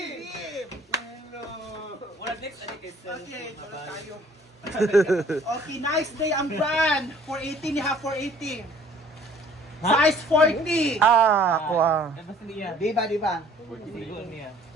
Okay, tulad tayo. Okay, nice day ang brand. 480 ni ha, 480. Size 40. Ako Di ba?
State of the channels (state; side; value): normal; both; correlation 0.55